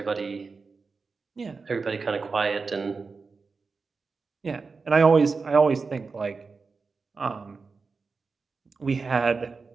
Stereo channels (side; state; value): left; quieter; 4.5 dB